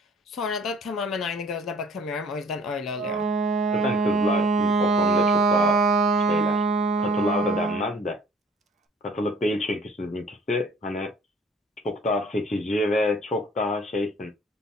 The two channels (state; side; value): normal; both; correlation 0.53